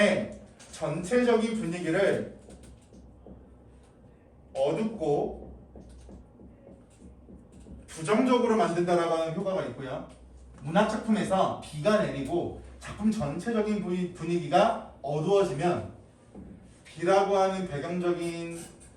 전체적인 분위기를 어둡고 부정적으로 만든다라고 하는 효과가 있고요. 문학작품에서 비가 내리고 작품 전체적인 분위기가 어두워지면 비라고 하는 배경적인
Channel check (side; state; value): both; identical; correlation 1.00